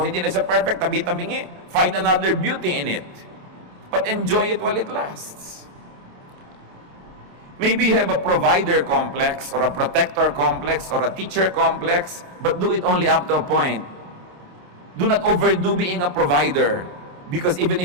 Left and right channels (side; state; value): left; late; 28 ms